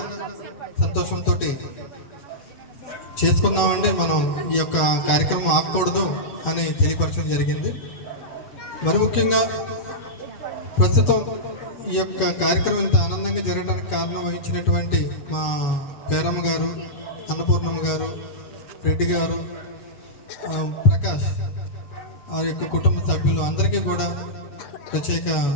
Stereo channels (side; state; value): right; late; 7.2 ms